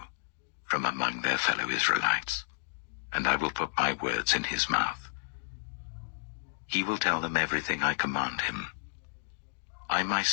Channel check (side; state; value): right; silent; digital silence